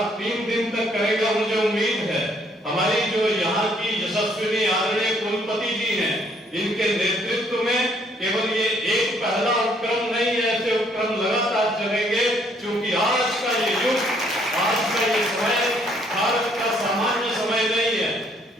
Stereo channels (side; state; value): both; normal; correlation 0.66